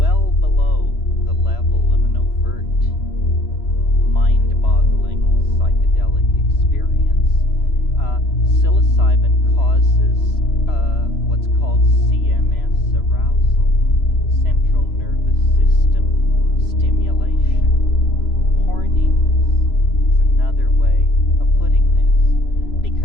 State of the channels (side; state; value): right; late; 3.0 ms